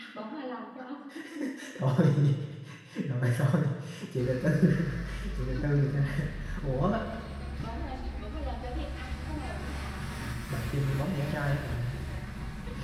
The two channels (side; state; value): both; identical; correlation 1.00